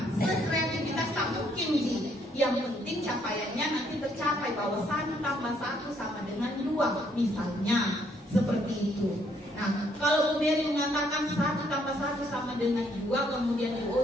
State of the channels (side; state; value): both; normal; correlation 0.69